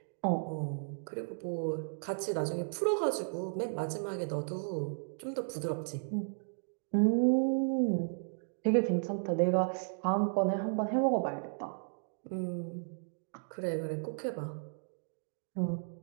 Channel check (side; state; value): left; silent; digital silence